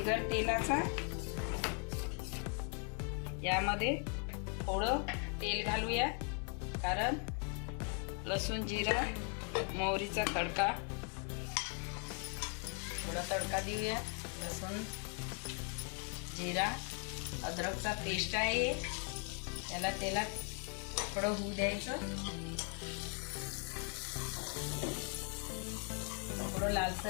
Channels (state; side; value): quieter; right; 39.6 dB